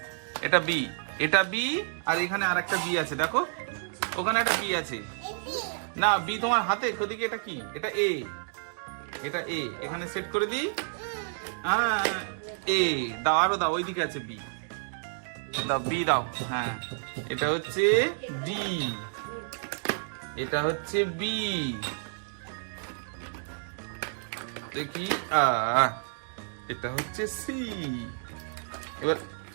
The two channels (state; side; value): silent; left; digital silence